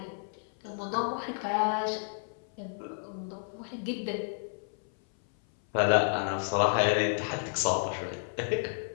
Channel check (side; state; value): right; silent; 57 dB below the other